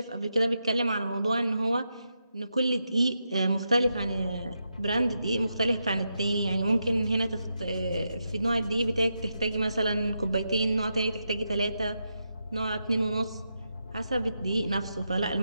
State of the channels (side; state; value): both; inverted; correlation -0.85